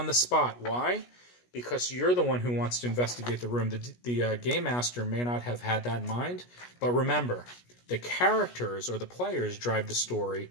the spot. Why? Because you're the one who wants to investigate the room. The game master may not have had that in mind, but remember, the characters or the players drive the story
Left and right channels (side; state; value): right; late; 17 ms